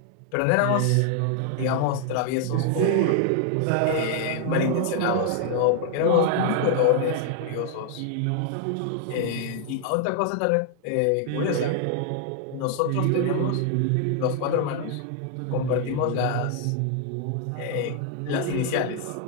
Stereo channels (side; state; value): both; different; correlation 0.00